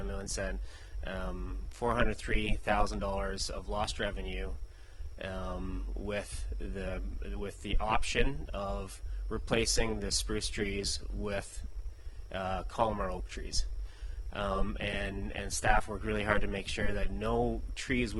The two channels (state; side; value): identical; both; correlation 1.00